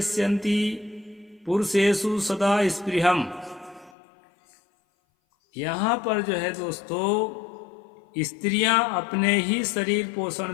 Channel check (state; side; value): drops out; right; at 3.9 s